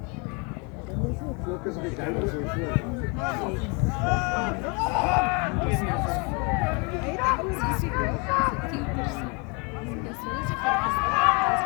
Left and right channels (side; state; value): right; quieter; 32.0 dB